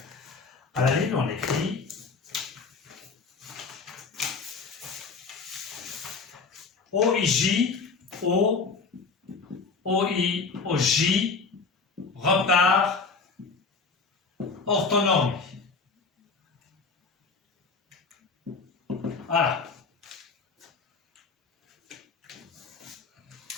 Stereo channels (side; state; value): right; quieter; 4.6 dB